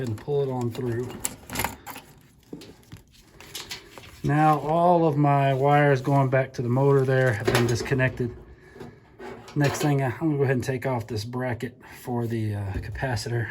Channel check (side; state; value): both; identical; correlation 1.00